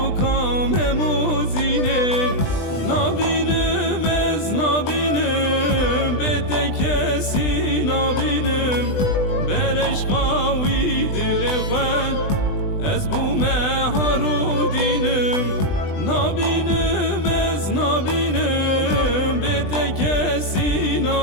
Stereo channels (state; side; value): late; right; 20 ms